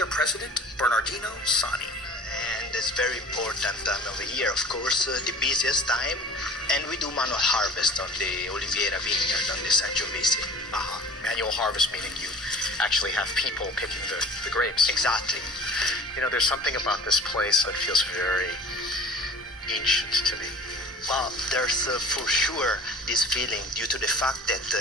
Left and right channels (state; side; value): normal; both; correlation 0.42